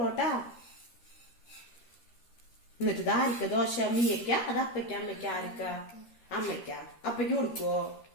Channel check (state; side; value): late; right; 13 ms